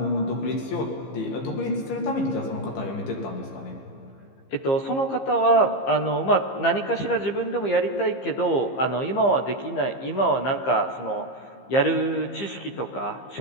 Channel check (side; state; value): right; late; 15 ms